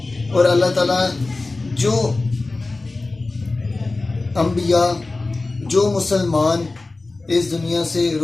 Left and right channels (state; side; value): quieter; right; 3.3 dB